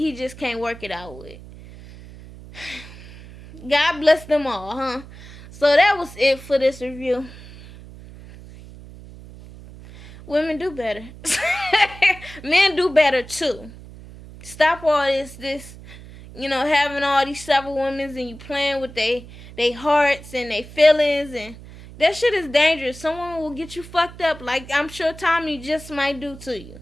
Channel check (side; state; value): right; noise; hum, 17 dB below the sound